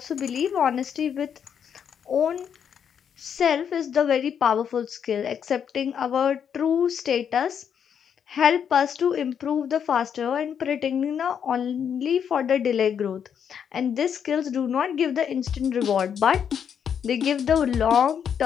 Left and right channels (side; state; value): right; quieter; 8.0 dB